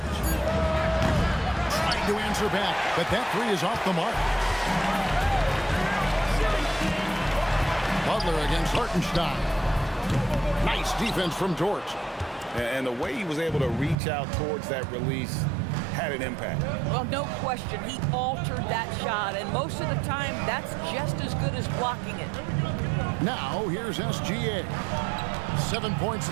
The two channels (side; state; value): left; drops out; at 14.0 s